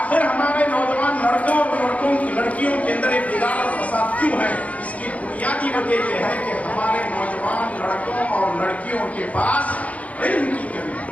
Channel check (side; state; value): right; late; 0.068 ms